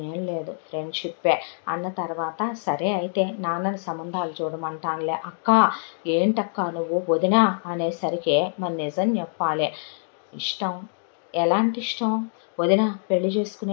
ఏం లేదు ఫ్రెండ్షిప్పే అన్న తర్వాత సరే అయితే నాన్నని సంబంధాలు చూడమంటానులే. అక్క ఏంటక్క నువ్వు వదినా అనేసరికి మరి నిజం చెప్పాలి. ఇష్టం ఎలాంటి ఇష్టం? వదిన పెళ్లి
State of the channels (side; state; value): right; silent; 62 dB below the other